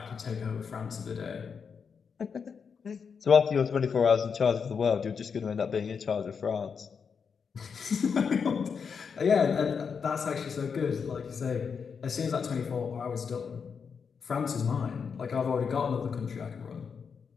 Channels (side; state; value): right; quieter; 6.1 dB